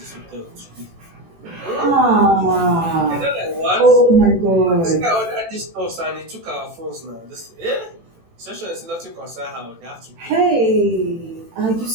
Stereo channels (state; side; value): late; left; 18 ms